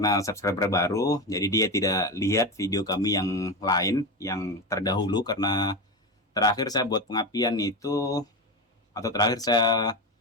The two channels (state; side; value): normal; both; correlation 0.19